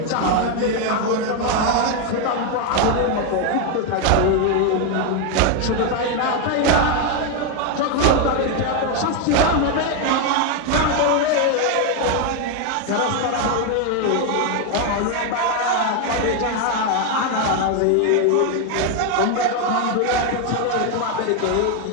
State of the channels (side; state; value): both; different; correlation 0.01